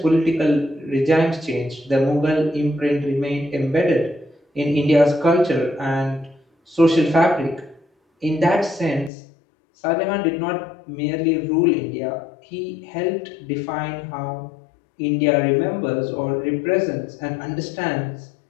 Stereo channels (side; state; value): right; drops out; at 9.1 s